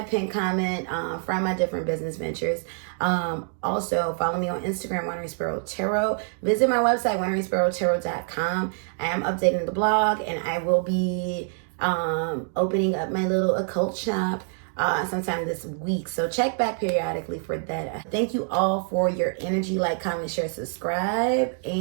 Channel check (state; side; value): silent; left; 59 dB below the other